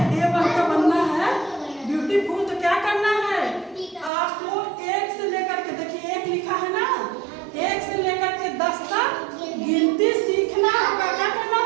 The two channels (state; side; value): drops out; left; at 4.1 s